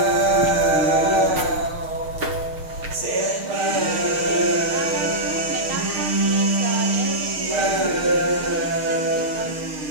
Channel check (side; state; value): left; late; 6.5 ms